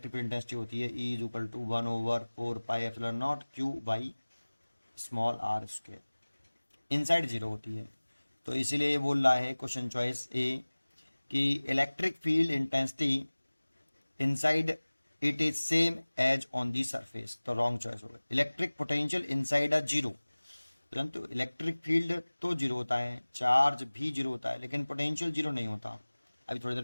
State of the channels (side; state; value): both; inverted; correlation -1.00